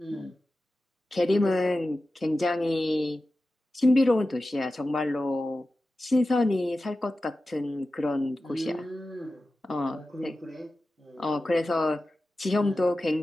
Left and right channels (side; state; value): both; normal; correlation 0.94